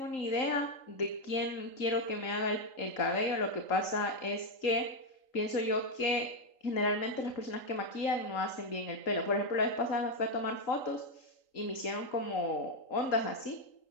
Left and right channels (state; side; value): late; right; 3.8 ms